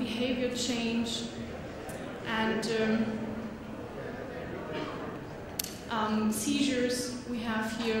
change, and seizures we have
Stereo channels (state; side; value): identical; both; correlation 1.00